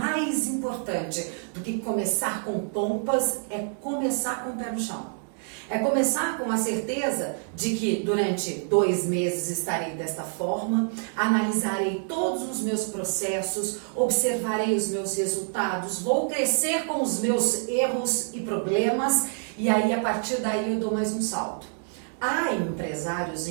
do que começar com pompas é começar com o pé no chão. É começar com a certeza de que durante 2 meses estarei desta forma, analisarei todos os meus processos, observarei os meus resultados, vou crescer com os meus erros e problemas e aí a partir daí eu dou mais um salto. Há empresários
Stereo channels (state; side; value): silent; left; 60 dB below the other